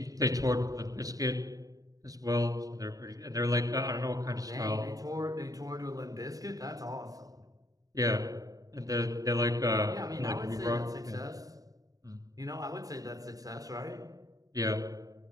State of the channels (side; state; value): left; late; 0.17 ms